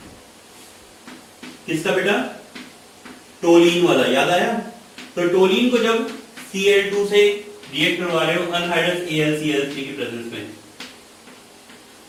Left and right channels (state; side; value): identical; both; correlation 1.00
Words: किसका बेटा? टोलीन वाला, याद आया? तो टोलीन को जब Cl2 से रिएक्ट करवा रहे हो अनहाइड्रस AlCl3 की प्रेजेंस में,